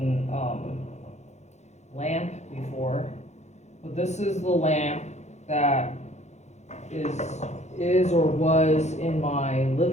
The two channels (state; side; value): late; right; 0.33 ms